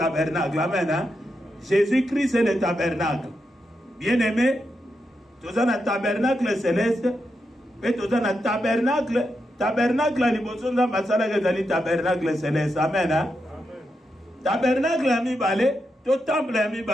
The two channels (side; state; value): both; normal; correlation 0.85